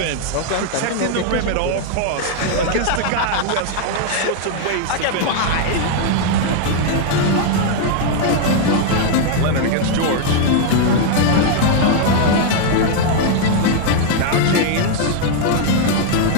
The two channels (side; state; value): both; different; correlation 0.00